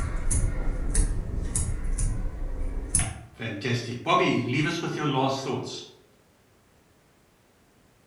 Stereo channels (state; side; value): identical; both; correlation 1.00